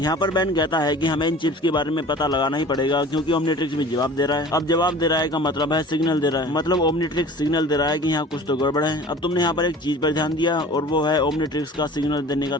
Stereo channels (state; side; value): normal; both; correlation 0.43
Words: पर बेन कहता है कि हमें इन चिप्स के बारे में पता लगाना ही पड़ेगा, क्योंकि ओमनिट्रिक्स भी जवाब दे रहा है। अब जवाब दे रहा है का मतलब है सिग्नल दे रहा है, मतलब ओमनिट्रिक्स सिग्नल दे रहा है कि यहाँ कुछ तो गड़बड़ है। अब तुमने यहाँ पर एक चीज पर ध्यान दिया और वो है ओमनिट्रिक्स का सिग्नल देने का